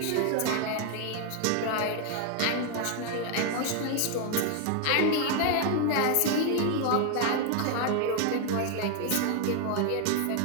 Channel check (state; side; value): different; both; correlation 0.00